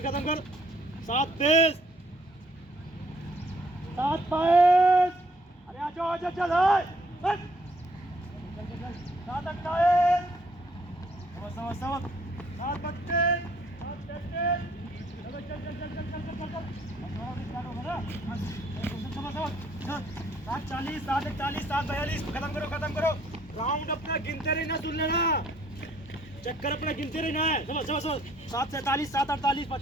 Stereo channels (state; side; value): normal; both; correlation 0.64